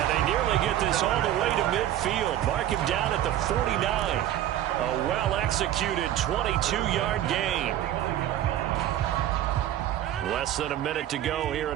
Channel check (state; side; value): quieter; left; 12.3 dB